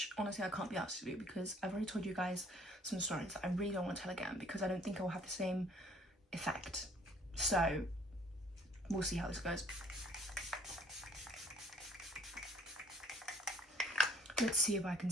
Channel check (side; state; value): both; normal; correlation 0.59